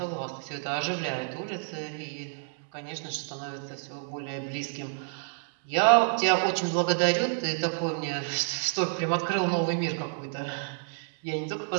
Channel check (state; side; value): silent; left; digital silence